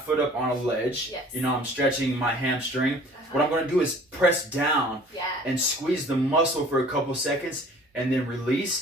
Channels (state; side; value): normal; both; correlation 0.50